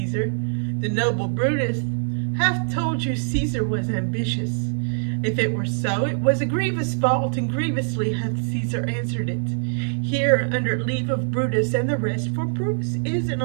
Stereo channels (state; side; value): silent; left; 57 dB below the other